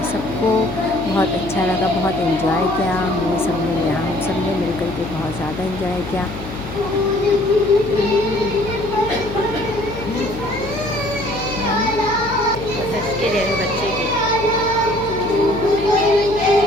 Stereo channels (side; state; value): left; noise; hum, 10 dB below the sound